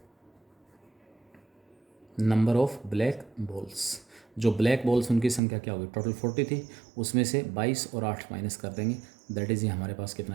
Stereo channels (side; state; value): left; drops out; at 5.4 s